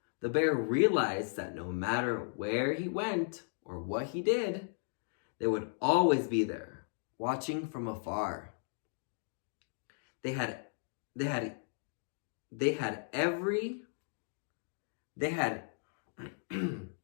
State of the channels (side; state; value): right; silent; digital silence